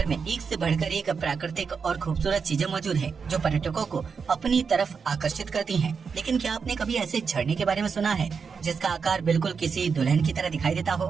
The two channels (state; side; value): quieter; left; 5.7 dB